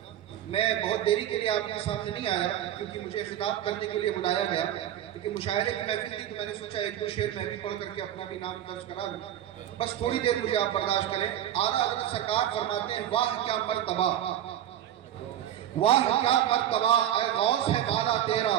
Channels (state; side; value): quieter; left; 11.3 dB